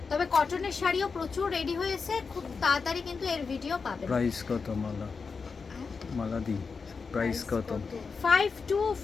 তবে কটনের শাড়িও প্রচুর রেডি হয়েছে, খুব তাড়াতাড়ি কিন্তু এর ভিডিও পাবেন। প্রাইস কত মালা? মালা দি প্রাইস কত?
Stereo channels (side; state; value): right; quieter; 5.0 dB